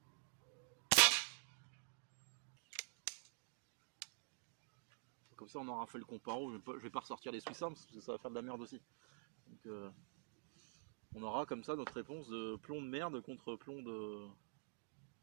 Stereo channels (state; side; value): silent; left; digital silence